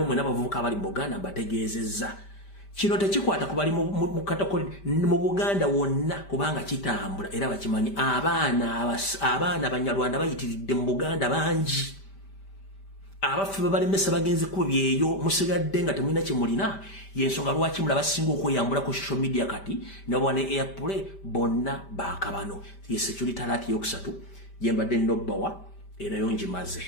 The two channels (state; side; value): late; right; 5.1 ms